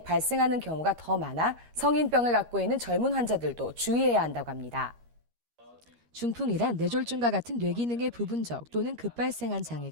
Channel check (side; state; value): left; late; 13 ms